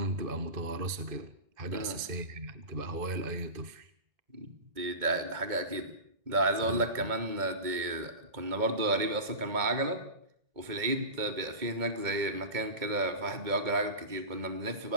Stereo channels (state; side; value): late; left; 2.2 ms